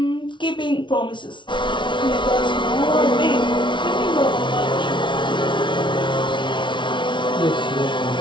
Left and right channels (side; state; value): right; late; 0.24 ms